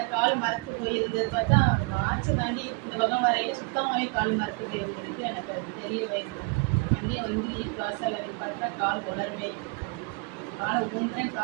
கால் மரத்து போயிருந்தது. பார்த்தா ஆச்சு தாண்டி இந்த பக்கம் வரையில சுத்தமாகவே கால் மரத்து போயிருந்ததுக்கு எனக்கு தெரியவே இல்லை. வண்டியை வந்து வாசல் நிப்பாட்டா கால் உணரவே இல்லை. கால் ஊன்றேன்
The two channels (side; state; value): left; quieter; 31.9 dB